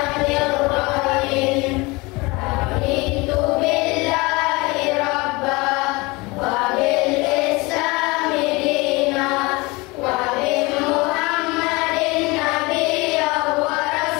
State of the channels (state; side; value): quieter; right; 24.4 dB